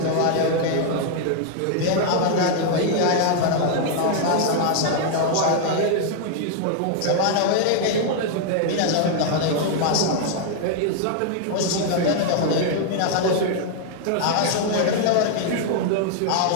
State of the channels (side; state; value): both; different; correlation 0.00